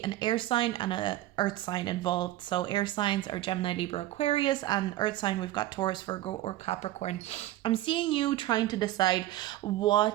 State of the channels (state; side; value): quieter; left; 15.1 dB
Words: an air sign and a earth sign involved. So air signs are Gemini, Libra, Aquarius, and earth sign we've got Taurus, Virgo, or Capricorn. I'm seeing you trying to decide